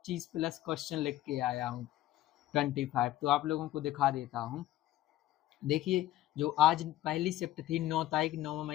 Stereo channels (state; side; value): quieter; right; 14.5 dB